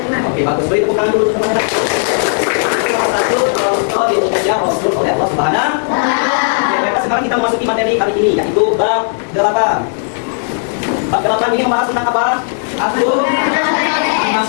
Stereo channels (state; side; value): silent; right; digital silence